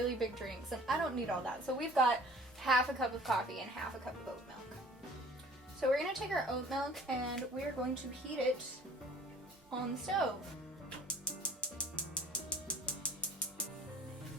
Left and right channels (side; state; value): both; normal; correlation 0.50